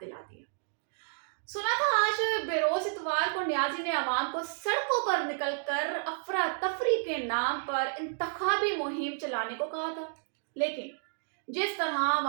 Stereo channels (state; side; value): silent; left; digital silence